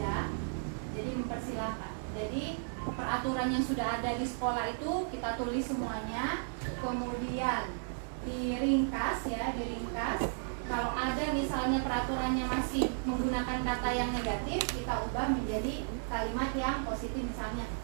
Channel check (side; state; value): left; silent; digital silence